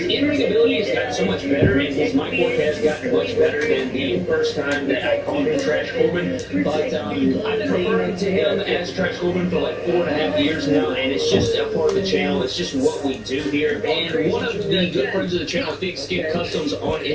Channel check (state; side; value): identical; both; correlation 1.00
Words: ability has gotten so much better, and his mic work has gotten much better than the first time that I called him Trash Corbin. But I've been hating to him as Trash Corbin for like 4.5 years now, and it's just a part of the channel. It's just what we do here. And one of the good friends of the channel, Big Skip Customs on